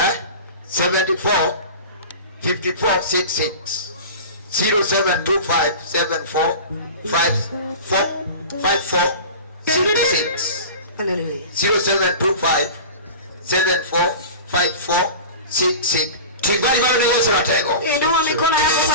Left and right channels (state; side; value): inverted; both; correlation -0.34